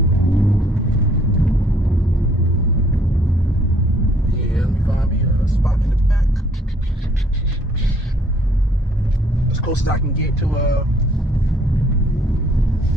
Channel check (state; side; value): normal; both; correlation 0.63